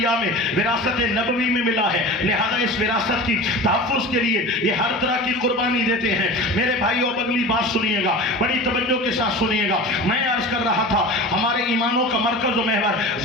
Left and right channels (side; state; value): both; normal; correlation 0.34